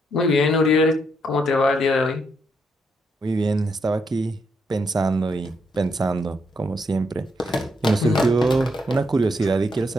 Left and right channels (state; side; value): normal; both; correlation 0.77